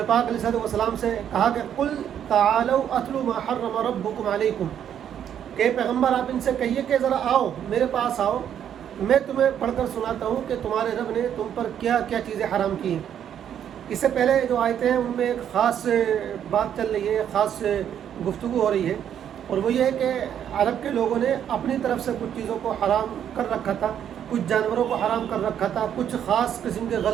پاک علیہ الصلوۃ والسلام سے کہا کہ قل تعالوا اتلوا ما حرم ربکم علیکم، کہ پیغمبر آپ ان سے کہیے کہ ذرا آؤ میرے پاس آؤ، میں تمہیں پڑھ کر سناتا ہوں کہ تمہارے رب نے تم پر کیا کیا چیزیں حرام کی ہیں۔ اس سے پہلے جو آیتیں ہیں ان میں ایک خاص بات چل رہی ہے، خاص گفتگو ہو رہی ہے، اور وہ یہ ہے کہ عرب کے لوگوں نے اپنی طرف سے کچھ چیزوں کو حرام کر رکھا تھا، کچھ جانوروں کو حرام کر رکھا تھا، کچھ خاص قسم کے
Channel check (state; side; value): quieter; left; 9.4 dB